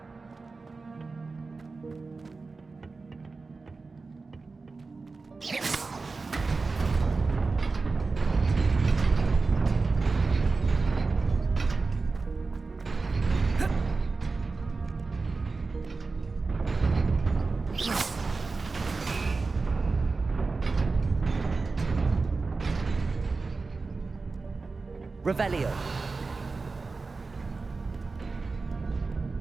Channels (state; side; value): quieter; left; 4.0 dB